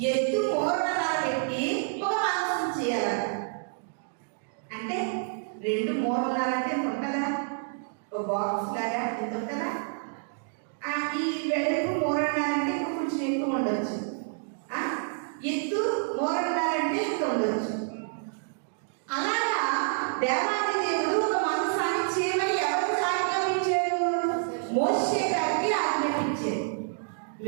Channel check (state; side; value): silent; left; digital silence